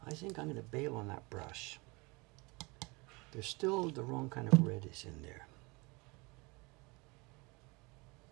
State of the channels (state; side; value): quieter; left; 26.5 dB